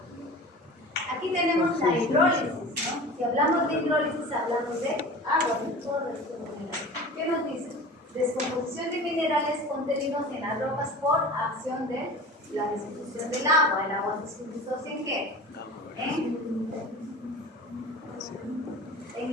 Aquí tenemos la hidrólisis, ¿no? Si hablamos de hidrólisis, hablamos de agua, de todo esto de minerales. ¿Qué nos dice? Descomposición de minerales contenidos en las rocas por acción de la disolución del agua. ¿El agua se disocia en qué? En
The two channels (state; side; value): normal; both; correlation 0.37